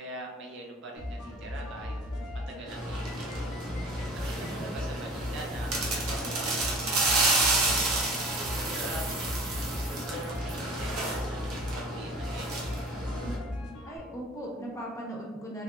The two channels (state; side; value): normal; both; correlation 0.44